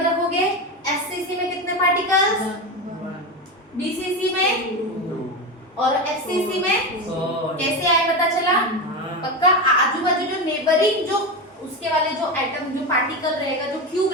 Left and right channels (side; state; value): both; normal; correlation 0.18